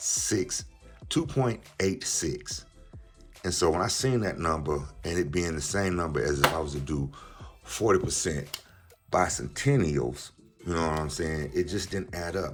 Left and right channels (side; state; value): both; identical; correlation 1.00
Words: And so when I seen that number and it being the same number as if I was to do 40% bicentennials, you know what I'm saying? It just didn't add